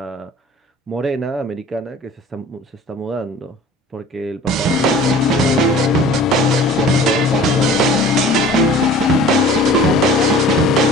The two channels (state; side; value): normal; both; correlation 0.45